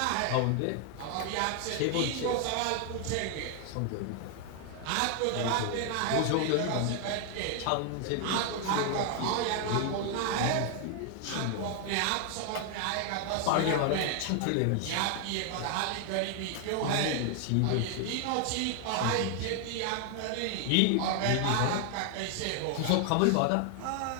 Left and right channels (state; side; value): different; both; correlation 0.00